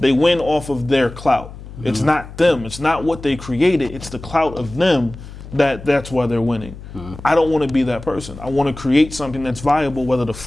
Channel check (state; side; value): noise; left; hum, 14 dB below the sound